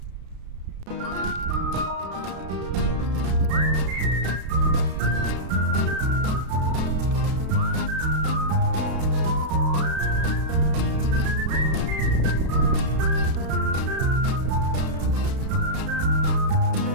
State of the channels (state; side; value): late; left; 32 ms